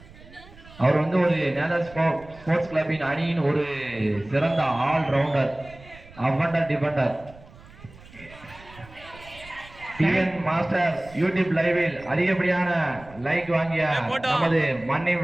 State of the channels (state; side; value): noise; right; rumble, 21 dB below the sound